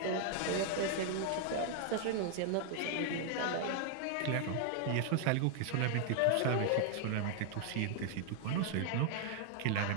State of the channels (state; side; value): different; both; correlation 0.00